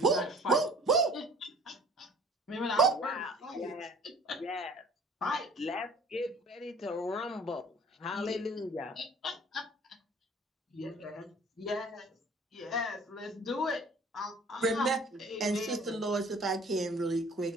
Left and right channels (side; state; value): both; normal; correlation 0.50